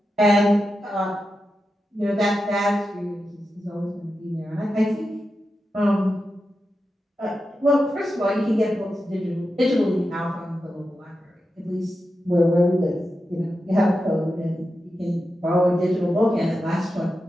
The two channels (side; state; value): both; normal; correlation 0.90